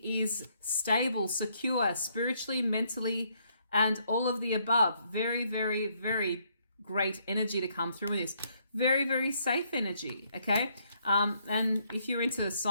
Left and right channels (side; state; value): both; inverted; correlation -0.71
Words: is stable, secure, spiritually, mentally, and all of the above. Very, very, very great energy to come through with this. Very, very safe energy, okay? And if you're into